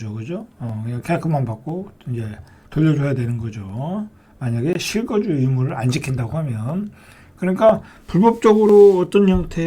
그죠? 그냥 계약금만 받고 이제 돌려줘야 되는 거죠. 만약에 실거주 의무를 안 지킨다고 하면. 그러니까 불법적으로 어떤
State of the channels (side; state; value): both; identical; correlation 1.00